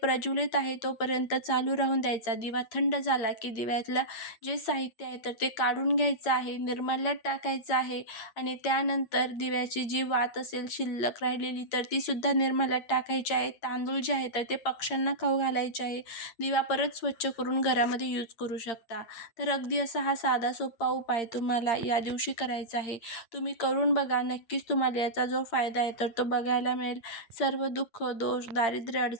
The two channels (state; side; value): late; right; 8.7 ms